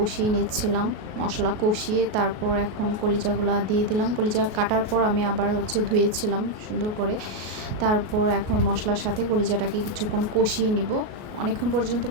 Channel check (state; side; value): late; left; 38 ms